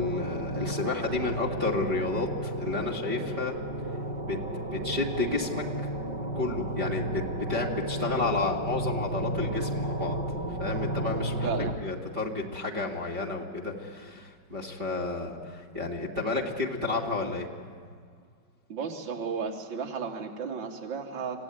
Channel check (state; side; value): late; left; 5.0 ms